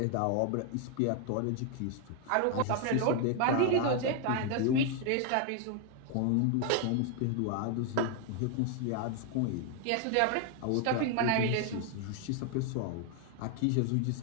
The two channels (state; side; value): different; both; correlation 0.00